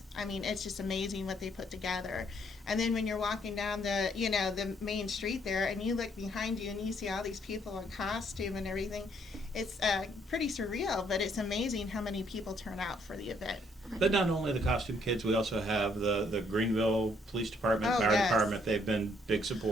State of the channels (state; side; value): normal; both; correlation 0.68